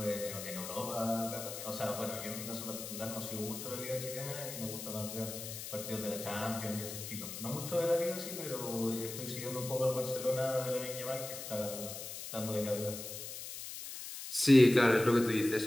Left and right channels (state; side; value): noise; left; hiss, 8 dB below the sound